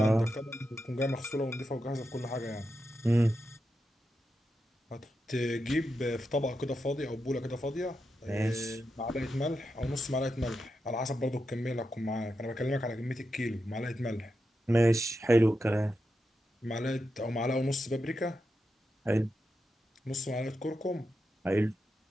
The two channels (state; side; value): normal; both; correlation 0.87